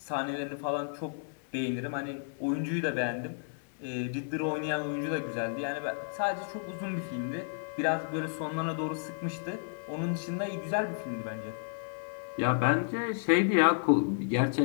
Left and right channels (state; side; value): silent; right; 56 dB below the other